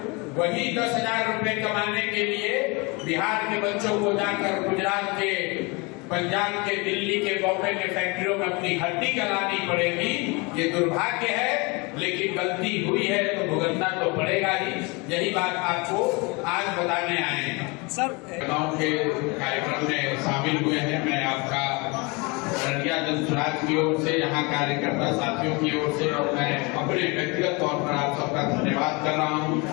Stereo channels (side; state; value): right; quieter; 28.1 dB